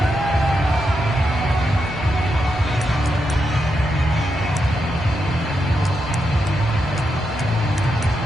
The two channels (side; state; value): both; normal; correlation 0.84